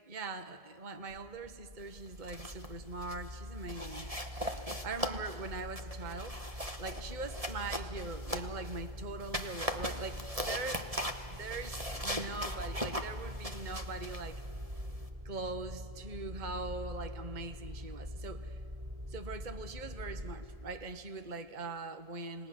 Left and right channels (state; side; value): late; left; 1.7 ms